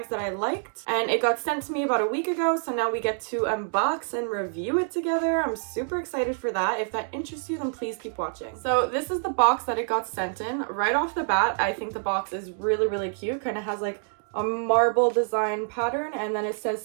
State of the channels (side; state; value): left; silent; digital silence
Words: that I liked and it got sent to me about a week ago, so now we get to unbox and review it together. I'm super excited for that. If that interests you, then please keep watching. So this is the box that it got sent in. Right off the bat, I think the box is really cute. Kind of has like a marble design pattern, and then it